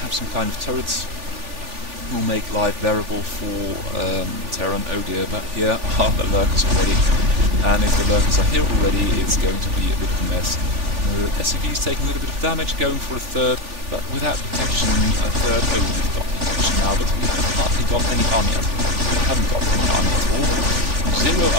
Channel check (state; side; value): late; left; 3.4 ms